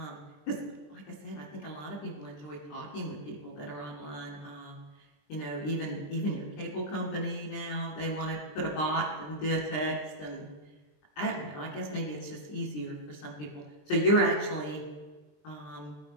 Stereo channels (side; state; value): right; late; 20 ms